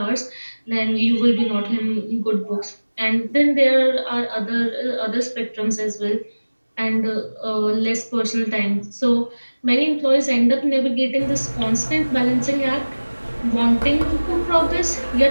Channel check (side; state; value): both; inverted; correlation -1.00